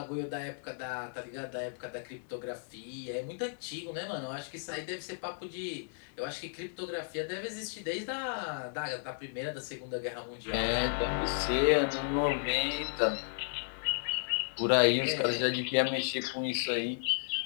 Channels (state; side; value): silent; right; 55 dB below the other